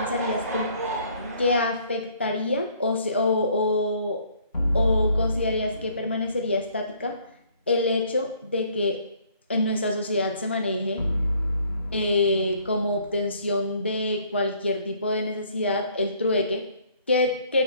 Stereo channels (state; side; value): inverted; both; correlation -0.62